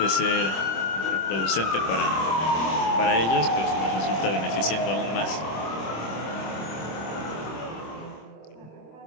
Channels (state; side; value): late; right; 26 ms